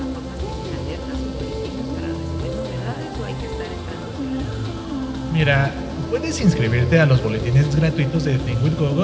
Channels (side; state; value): both; identical; correlation 1.00